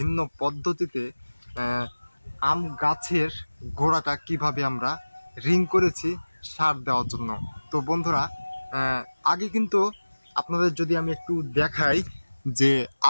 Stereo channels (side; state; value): both; inverted; correlation -1.00